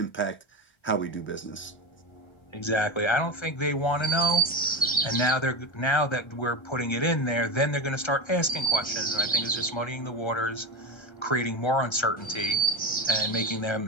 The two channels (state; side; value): late; right; 1.3 ms